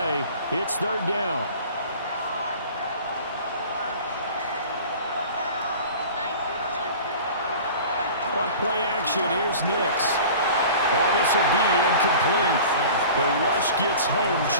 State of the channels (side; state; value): both; inverted; correlation -0.41